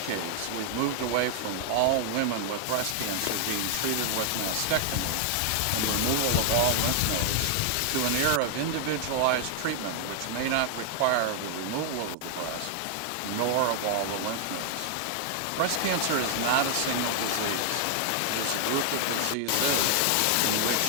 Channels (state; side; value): different; both; correlation 0.00